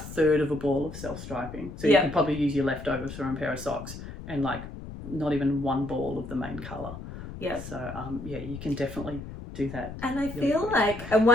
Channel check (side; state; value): left; noise; rumble, 11 dB below the sound